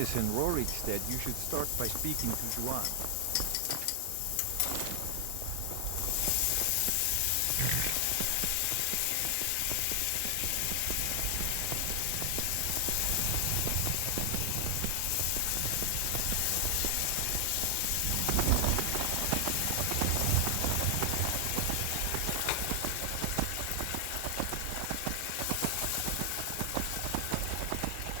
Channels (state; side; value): different; both; correlation 0.00